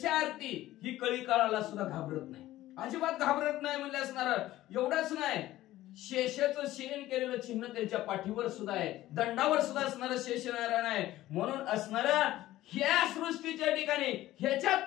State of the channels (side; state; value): right; quieter; 15.3 dB